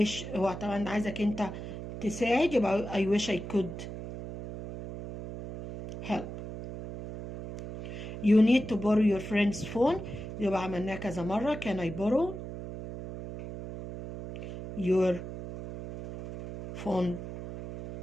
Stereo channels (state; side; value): noise; right; hum, 9 dB below the sound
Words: هو طبعا عايزك انت تساعد، يبقى I wish I could help. You need to borrow your friend's phone. يبقى عملناه كذا مرة can I borrow your phone